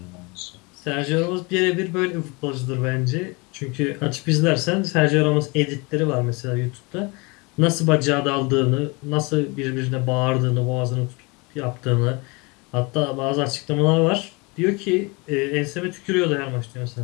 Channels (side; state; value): right; quieter; 27.9 dB